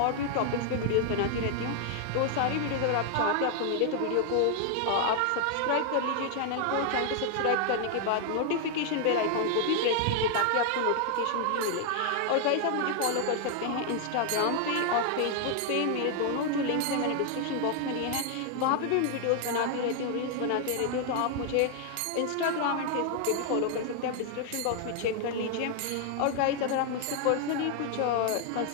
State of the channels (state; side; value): different; both; correlation 0.00